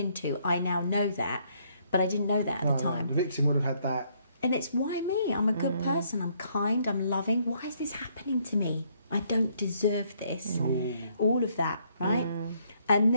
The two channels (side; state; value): both; inverted; correlation -0.69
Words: I now know that, but I didn't know that at the time. The victim would have had that. And it's why me? I'm a good person, I'm kind, I'm loving. Why is this happening to me? I don't deserve this. All of that, right? And